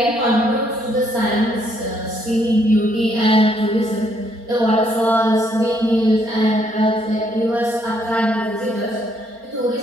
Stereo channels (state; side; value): late; left; 4.3 ms